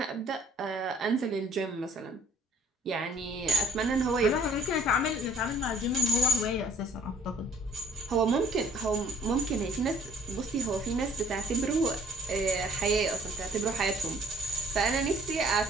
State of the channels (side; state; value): both; normal; correlation 0.56